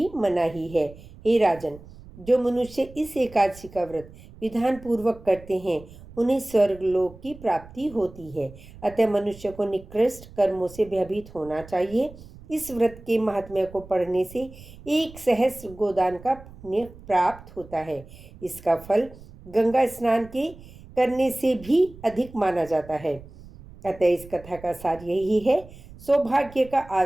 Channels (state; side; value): noise; right; rumble, 19 dB below the sound